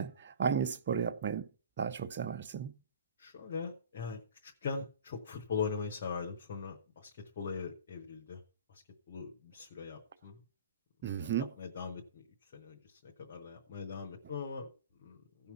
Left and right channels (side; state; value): both; inverted; correlation -0.40